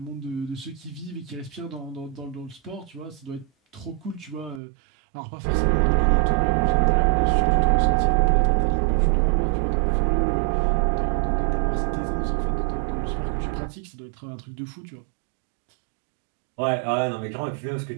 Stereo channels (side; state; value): left; drops out; at 4.6 s